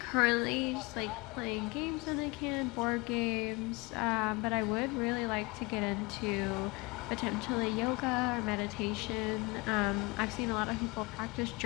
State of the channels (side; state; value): right; quieter; 25.9 dB